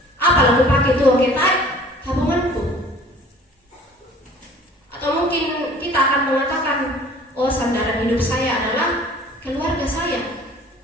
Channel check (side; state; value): both; normal; correlation 0.49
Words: Apa aku pakai tuh ketai tabunganku? Atau mungkin kita akan mengatakan, oh, sandaran hidup saya adalah keluarga saya.